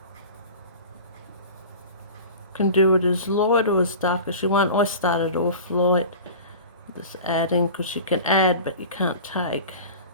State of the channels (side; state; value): both; inverted; correlation -0.36